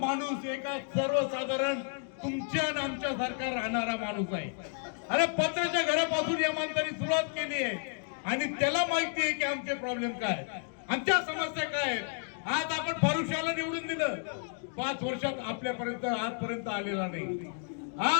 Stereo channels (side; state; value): right; silent; 57 dB below the other